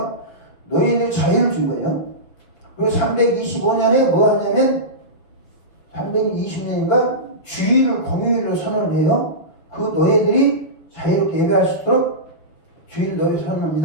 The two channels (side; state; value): right; late; 6.5 ms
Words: 노예들 자유를 준 거예요. 그리고 325년에 뭐 하냐면 320년인가 주일을 공휴일로 선언을 해요. 그 노예들이 자유롭게 예배할 수 있도록 주일 노예